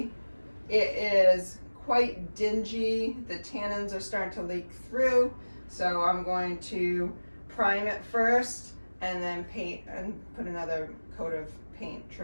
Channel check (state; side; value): inverted; both; correlation -1.00